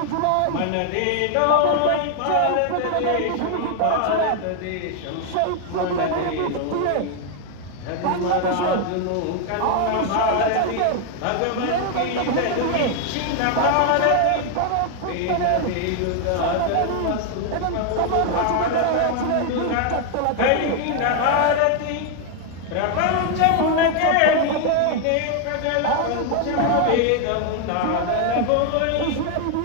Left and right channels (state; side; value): different; both; correlation 0.00